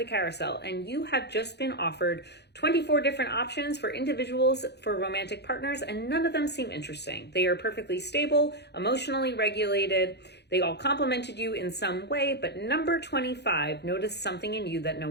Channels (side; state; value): right; late; 0.49 ms